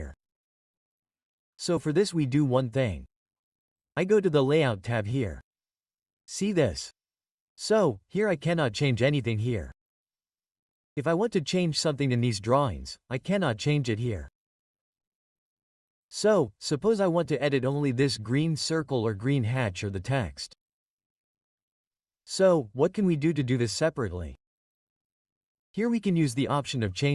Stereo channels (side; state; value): both; identical; correlation 1.00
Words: So for this we do one thing. I go to the Layout tab here. See this? So, here I cannot change anything here. If I want to change something in these drawings, I cannot change it here. So, suppose I want to edit only this green circle or green hatch or the text. So, what can we do to do this separately? Here we can use the option of